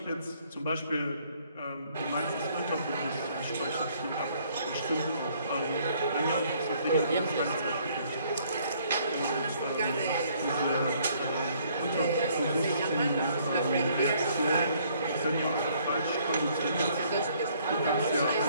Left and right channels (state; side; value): inverted; both; correlation -0.64